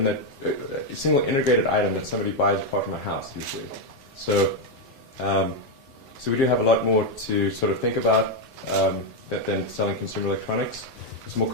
integrated item that somebody buys apart from a house usually. So we do have a lot more to sort of think about than selling consumer electronics. It's a more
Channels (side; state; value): both; normal; correlation 0.03